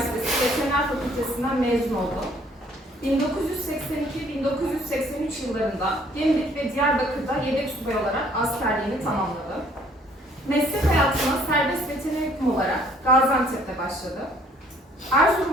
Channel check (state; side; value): normal; both; correlation 0.60